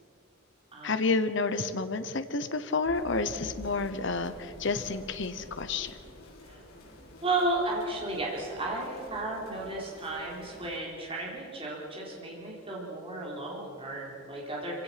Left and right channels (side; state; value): both; normal; correlation 0.04